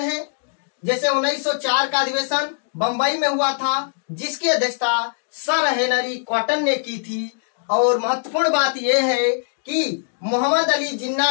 जैसे 1904 का अधिवेशन बंबई में हुआ था, जिसकी अध्यक्षता सर हेनरी कॉटन ने की थी। और महत्वपूर्ण बात यह है कि मोहम्मद अली जिन्ना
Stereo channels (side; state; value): right; silent; digital silence